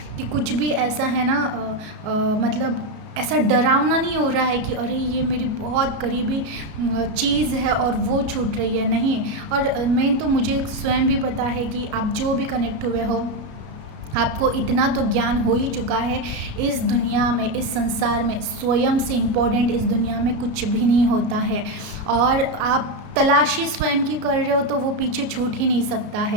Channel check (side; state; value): left; late; 33 ms